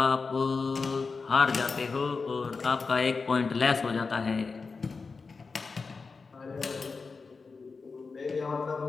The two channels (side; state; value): right; quieter; 4.5 dB